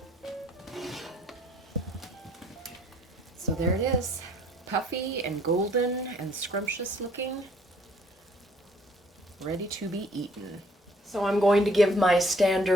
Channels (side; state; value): both; normal; correlation 0.60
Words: So there it is, puffy and golden and scrumptious looking, ready to be eaten. So I'm going to give my